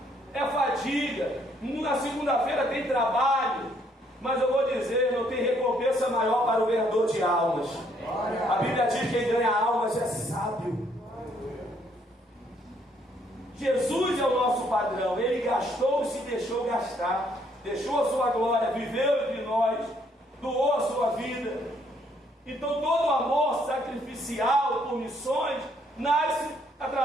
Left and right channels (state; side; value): normal; both; correlation 0.68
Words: é fadiga. Na segunda-feira tem trabalho, mas eu vou dizer, não tem recompensa maior para o ganhador de almas. A Bíblia diz que quem ganha almas é sábio. Jesus é o nosso padrão. Ele gastou e se deixou gastar, deixou a sua glória, viveu entre nós, doou a sua vida. Então todo amor sacrificial por missões nasce